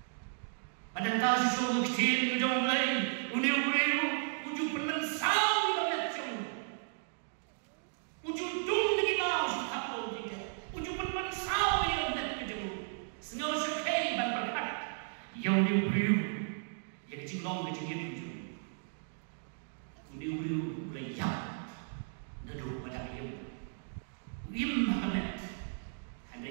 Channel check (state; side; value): silent; left; digital silence